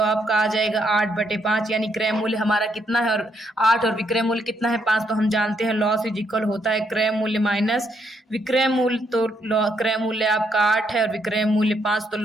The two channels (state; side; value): normal; both; correlation 0.74